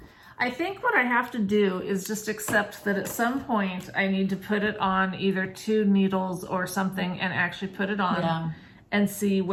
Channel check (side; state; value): both; identical; correlation 1.00